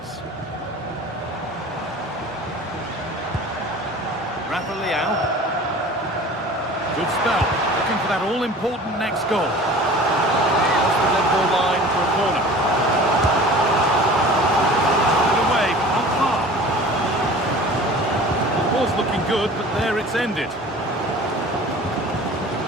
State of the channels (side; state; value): both; normal; correlation 0.42